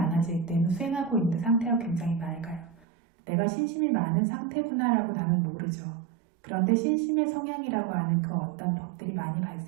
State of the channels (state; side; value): drops out; left; at 2.8 s